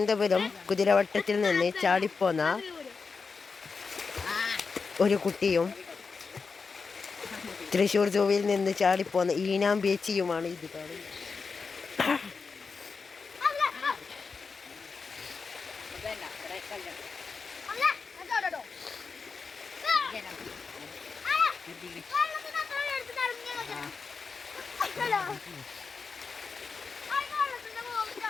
കുതിരവട്ടത്തിൽ നിന്ന് ചാടിപ്പോന്ന ഒരു കുട്ടിയും തൃശ്ശൂർ സൂവിൽ നിന്ന് ചാടിപ്പോന്ന ഈനാം ബേച്ചിയുമാണ് ഇത് കാണുന്നത്.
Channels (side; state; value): right; quieter; 4.9 dB